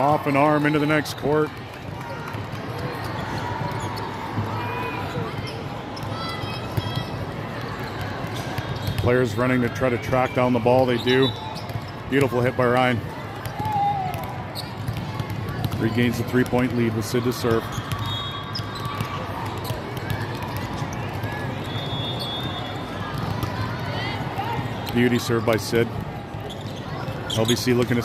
an arm into the next court. Players running to try to track down the ball. They do. Beautiful hit by Ryan. Regains the 3-point lead with Sid to serve. Beauty serve by Sid. LVC looking to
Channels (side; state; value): both; identical; correlation 1.00